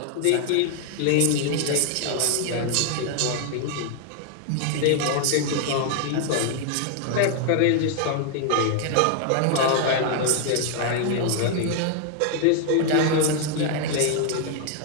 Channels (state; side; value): different; both; correlation 0.00